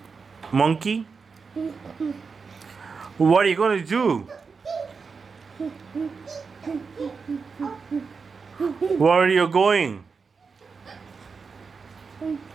monkey? What are you going to do? Where are you going?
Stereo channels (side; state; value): left; quieter; 5.1 dB